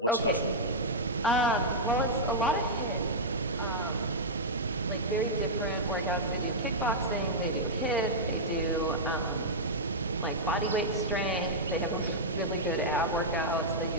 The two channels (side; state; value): both; normal; correlation -0.09